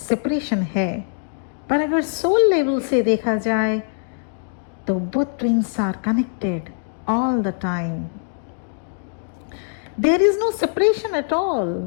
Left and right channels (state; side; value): silent; right; digital silence